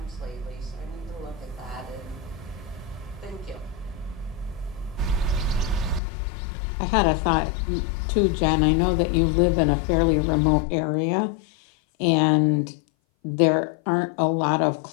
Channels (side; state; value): right; drops out; at 6.0 s